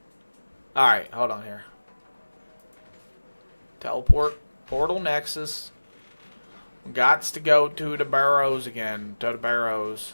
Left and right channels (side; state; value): both; inverted; correlation -1.00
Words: Alright, hold on here. Teleport. Portal Nexus. Gots to go to the barrows again. To the barrows.